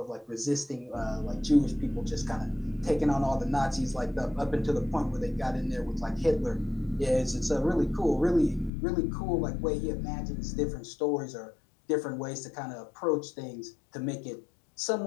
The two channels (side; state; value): right; drops out; at 8.7 s